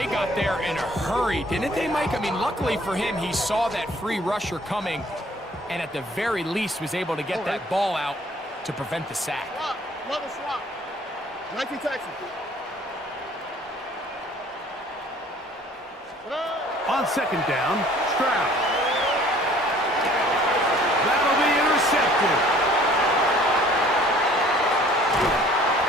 got there in a hurry, didn't they, Mike? I mean, luckily for him, he saw that free rusher coming, and at the very least was able to get that ball out to prevent the sack. Level swap. 19 Texans. On second down, Stroud. That'll be intercepted.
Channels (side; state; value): both; normal; correlation 0.55